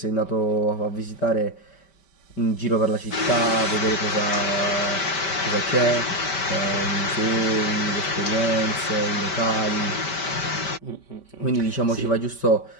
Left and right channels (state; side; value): late; right; 5.2 ms